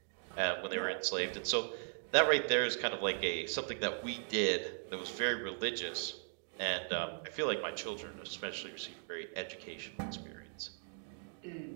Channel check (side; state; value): left; silent; 52 dB below the other